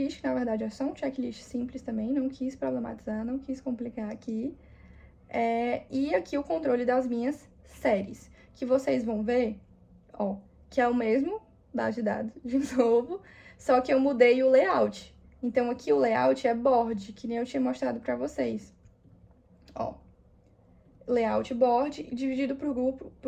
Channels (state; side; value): identical; both; correlation 1.00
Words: que na verdade é só um checklist simples também, não quis problematizar, não quis complicar aqui. E aqui o controle das minhas séries, que vocês vão ver, ó, que é o mesmo, base de dados, de novo, só que eu mudei o layout. Então, aqui o layout é board, que nem eu tinha mostrado pra vocês. Ó, layout board dividido por